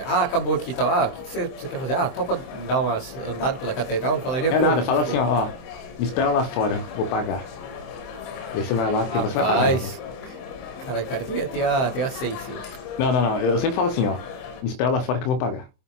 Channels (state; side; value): late; right; 23 ms